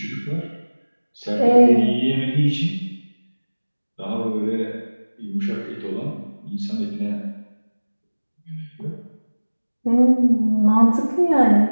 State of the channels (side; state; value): both; inverted; correlation -1.00